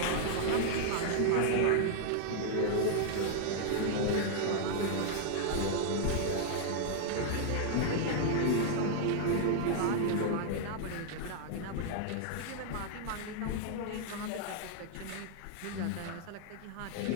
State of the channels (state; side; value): different; both; correlation 0.00